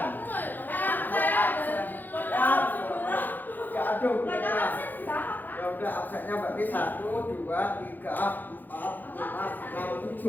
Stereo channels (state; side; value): late; right; 0.087 ms